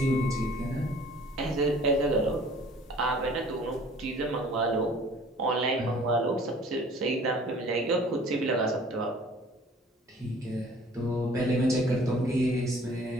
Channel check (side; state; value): both; normal; correlation 0.51